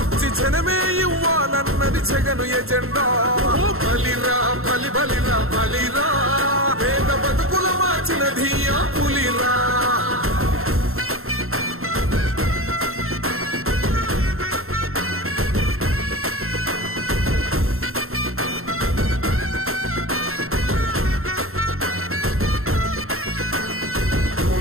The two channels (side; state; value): left; late; 0.62 ms